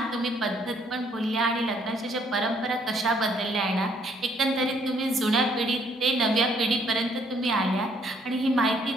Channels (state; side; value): normal; both; correlation 0.66